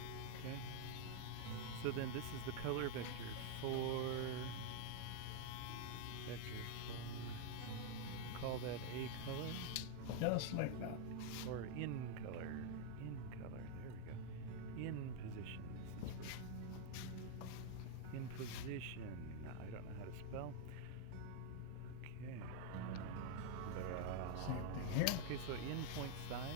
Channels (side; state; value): both; different; correlation 0.00